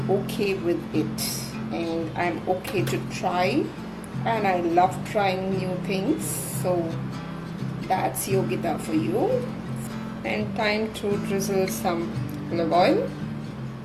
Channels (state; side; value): identical; both; correlation 1.00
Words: okay with it and I'm okay to try, and I love trying new things. So that's Yogita for you. And time to drizzle some olive oil.